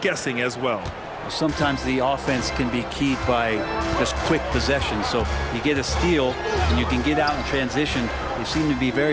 as well. Sometimes the offense can be keyed by just quick possession. So you get a steal and you can get out in transition. They seem to be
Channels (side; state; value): both; identical; correlation 1.00